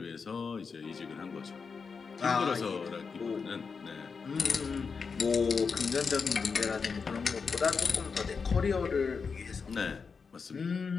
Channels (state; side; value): quieter; right; 5.3 dB